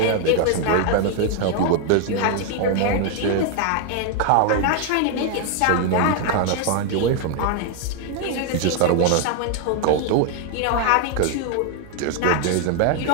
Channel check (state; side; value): different; both; correlation 0.00